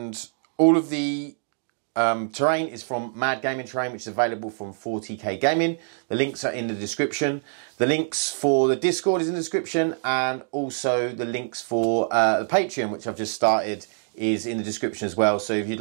all of the terrain is from Mad Gaming Terrain, which is available from 40k Gaming. The links are in the description. The links for the Discord is in the description, and also the links for the Patreon, which I've just started, is in the description as well. So if you'd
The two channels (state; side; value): silent; left; digital silence